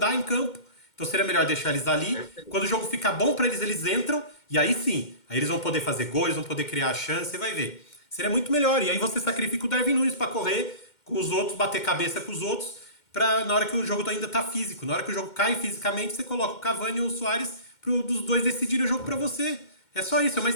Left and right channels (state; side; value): late; right; 2.1 ms